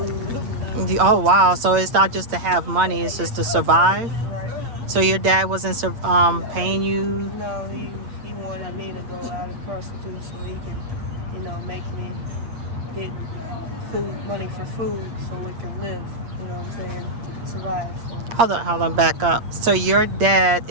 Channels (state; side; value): late; left; 8.6 ms